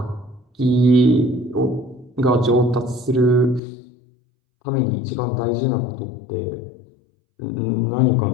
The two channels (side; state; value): right; drops out; at 3.6 s